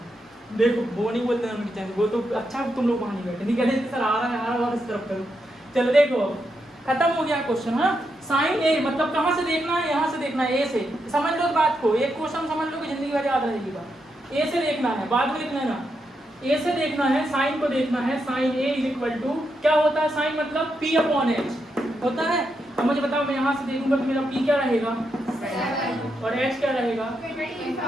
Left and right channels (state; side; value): normal; both; correlation 0.83